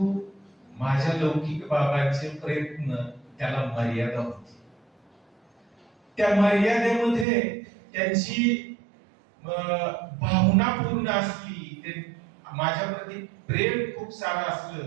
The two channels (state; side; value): drops out; left; at 7.2 s